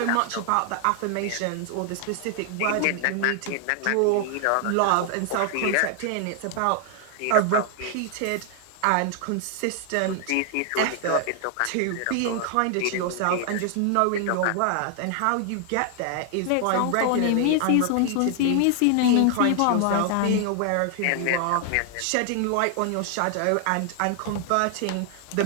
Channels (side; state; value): both; different; correlation 0.00